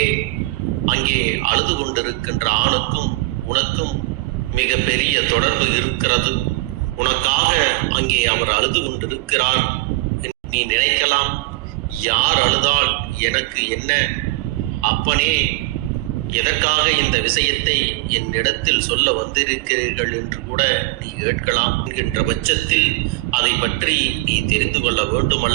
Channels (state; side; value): quieter; left; 20.4 dB